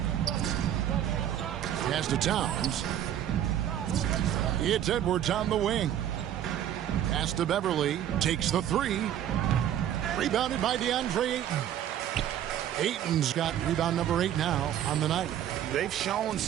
Pass to Towns. It's Edwards on the wing. Pass to Beverly. Takes the 3. Rebounded by DeAndre Ayton. Ayton's got rebound number 8 now on the night. They've shown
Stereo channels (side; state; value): left; quieter; 10.9 dB